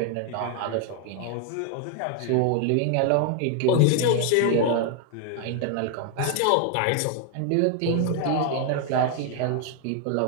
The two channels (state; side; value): different; both; correlation 0.00